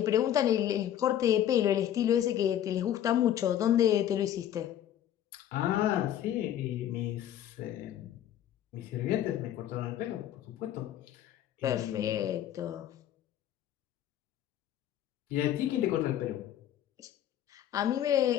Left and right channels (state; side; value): quieter; right; 11.2 dB